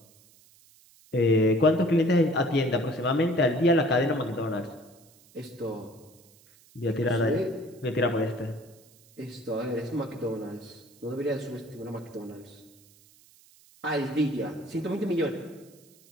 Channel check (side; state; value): right; noise; hiss, 28 dB below the sound